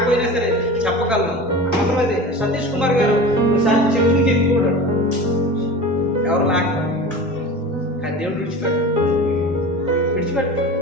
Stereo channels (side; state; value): both; normal; correlation 0.33